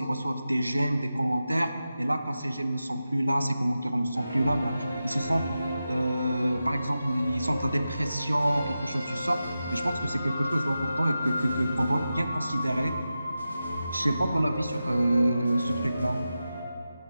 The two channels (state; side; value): inverted; both; correlation -0.92